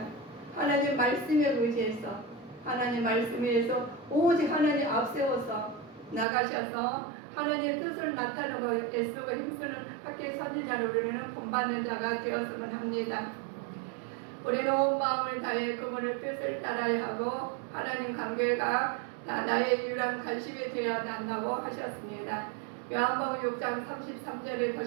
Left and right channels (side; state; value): left; drops out; at 6.2 s